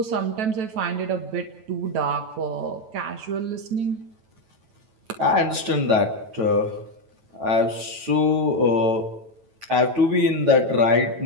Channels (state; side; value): late; left; 9.2 ms